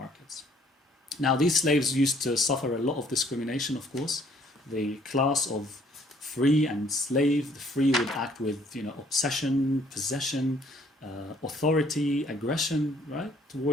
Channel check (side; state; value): both; normal; correlation 0.61